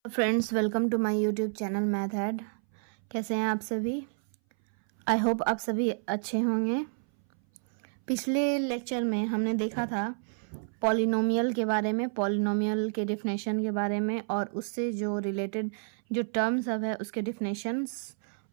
Friends, welcome to my YouTube channel math head. कैसे हैं आप सभी? आई होप आप सभी अच्छे होंगे। पिछले लेक्चर में हमने देखा था पॉलिनोमियल के बारे में, पॉलिनोमियल के डिफिनेशन के बारे में, और उससे जो रिलेटेड जो टर्म सब है उसके डिफिनेशंस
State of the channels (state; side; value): silent; left; 58 dB below the other